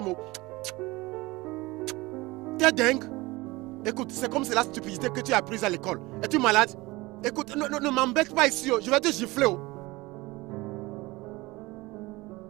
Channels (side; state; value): left; quieter; 21.6 dB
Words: T'es dingue? Écoute, c'est comme c'est la stupidité que tu as apprise à l'école. Es-tu malade? Écoute, ne m'embête pas ici. Je vais te gifler.